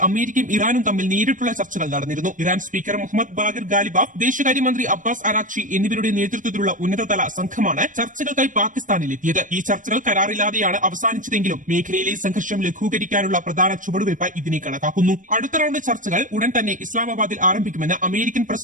അമേരിക്കയും ഇറാനും തമ്മിൽ നേരിട്ടുള്ള ചർച്ചകൾ നടന്നിരുന്നു. Iran speaker Mohammad Bagher Ghalibaf, വിദേശകാര്യമന്ത്രി അബ്ബാസ് അറാഖ്ചി എന്നിവരുടെ നേതൃത്വത്തിലുള്ള ഉന്നതതല സംഘമാണ് ചർച്ചകൾക്കായി പാകിസ്ഥാനിലെത്തിയത്. ഈ ചർച്ചകൾ കരാറില്ലാതെയാണ് അവസാനിച്ചതെങ്കിലും മേഖലയിലെ സംഘർഷം ലഘൂകരിക്കാനുള്ള പ്രധാന ചുവടുവയ്പായി ഇതിനെ കണക്കാക്കുന്നു. അടുത്ത റൌണ്ട് ചർച്ചകൾ ഉടൻ തന്നെ ഇസ്ലാമാബാദിൽ ആരംഭിക്കുമെന്ന് അമേരിക്കൻ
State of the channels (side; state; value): left; late; 0.38 ms